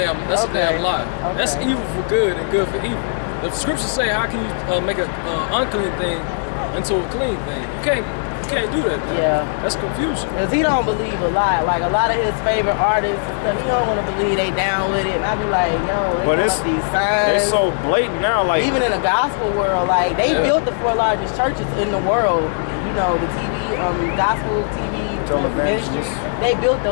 lie. Okay. That's evil for good and good for evil. The scriptures say, how can you make an unclean thing into a clean thing? You can't do that. Man. Yeah. That's confusion. Because he don't believe a lot. Like a lot of his favorite artists and stuff, he don't want to believe they down with it. And I be like, yo, they But got these signs. They so blatant now, like Even in the gospel world, like they built the 4 largest churches in the world. You know, the TV, gospel TV ministry. They built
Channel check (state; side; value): silent; right; digital silence